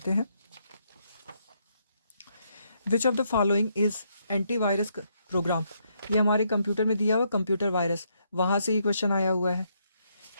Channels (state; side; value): inverted; both; correlation -0.75